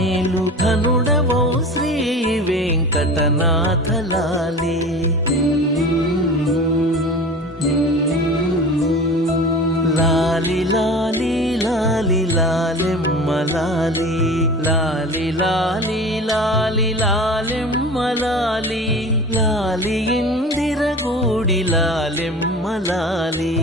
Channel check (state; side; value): normal; both; correlation 0.36